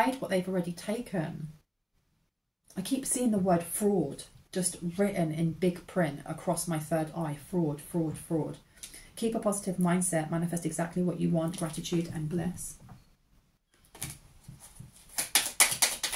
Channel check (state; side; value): identical; both; correlation 1.00